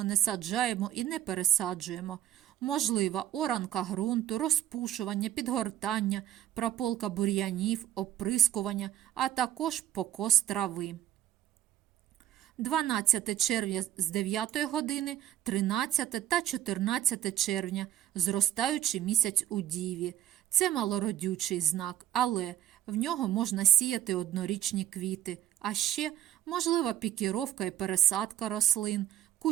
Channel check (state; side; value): quieter; left; 11.9 dB